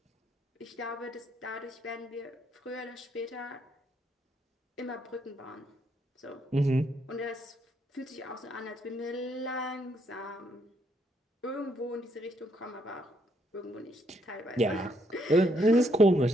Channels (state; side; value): normal; both; correlation 0.73